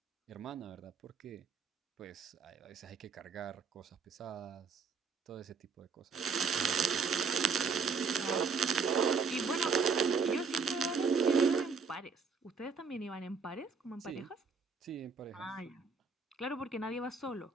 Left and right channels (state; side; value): quieter; left; 5.1 dB